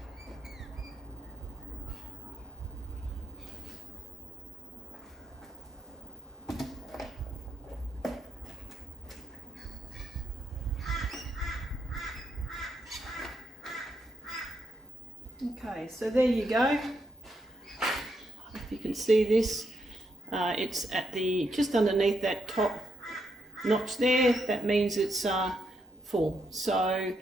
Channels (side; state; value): both; normal; correlation 0.79